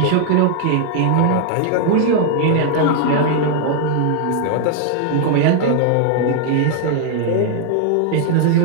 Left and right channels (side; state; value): both; different; correlation 0.00